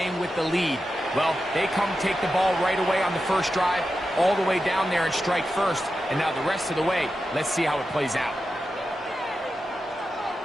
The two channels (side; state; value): both; normal; correlation 0.90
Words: with the lead? Well, they come take the ball right away on the first drive, all the way down there and strike first. And now the rest of the way, let's see how it plays out.